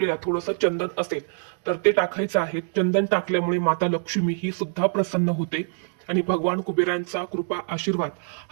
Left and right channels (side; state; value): left; silent; 62 dB below the other